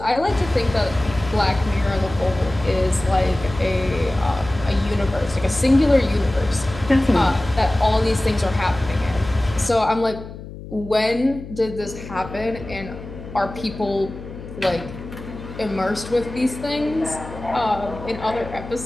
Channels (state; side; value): noise; left; hum, 13 dB below the sound